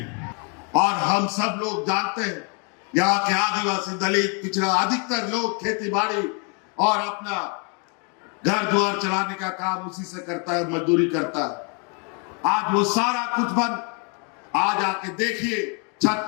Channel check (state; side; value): quieter; right; 35.5 dB